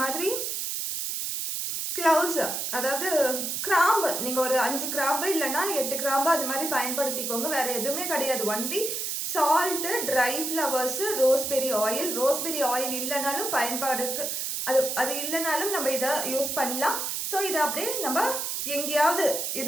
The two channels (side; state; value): right; noise; hiss, 2 dB below the sound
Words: மாதிரி க்ளவுஸ், அதாவது கிராம்பு, நீங்கள் ஒரு 5 கிராம்பு இல்லைன்னா 8 கிராம்பு அது மாதிரி பயன்படுத்திக்கோங்க. வேறு எதுவுமே கிடையாது. Only salt, try flowers, raspberry oil இல்லைனாலும் பயன்பாடுக்கு அது இல்லைனாலும் நம்ம இதை யூஸ் பண்ணலாம். ஸோ இதை அப்படியே நம்ம எங்கேயாவது